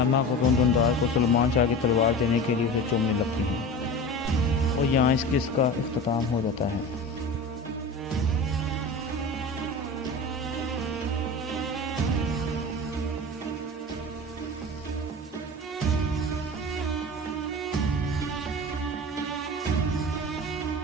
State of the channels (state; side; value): normal; both; correlation 0.32